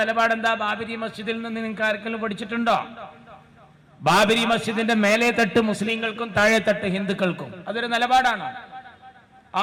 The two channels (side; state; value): both; identical; correlation 1.00